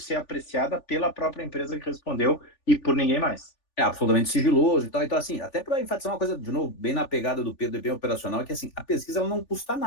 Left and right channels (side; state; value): right; late; 3.4 ms